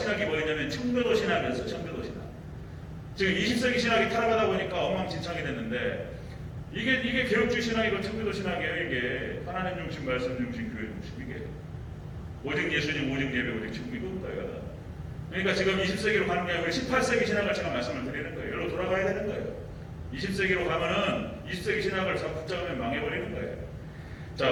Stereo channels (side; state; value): both; identical; correlation 1.00